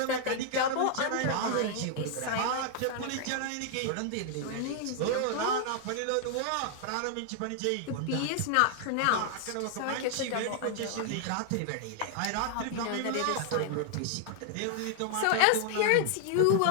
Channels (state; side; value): different; both; correlation 0.00